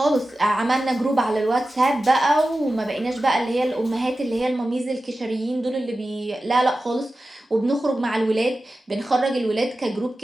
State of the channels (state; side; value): normal; both; correlation 0.94